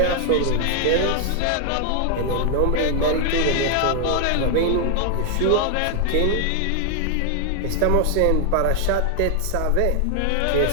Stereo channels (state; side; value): different; both; correlation 0.00